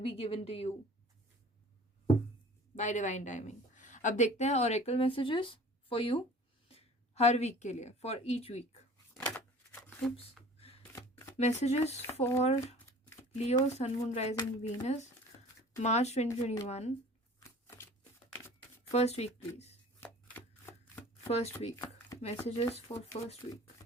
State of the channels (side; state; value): both; normal; correlation 0.45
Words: be given to you by divine timing. अब देखते हैं ऑरेकल मैसेजेस फॉर यू हर वीक के लिए, for each week. Messages for Leo, sun, moon, rising, Venus, March 2021, first week please. First week. Messages for first week.